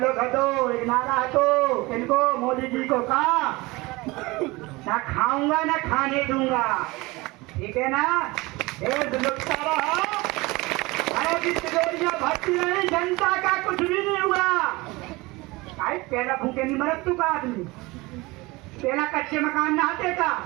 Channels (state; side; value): quieter; left; 22.6 dB